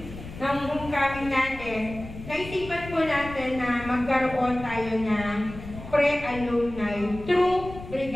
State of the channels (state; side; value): noise; left; rumble, 13 dB below the sound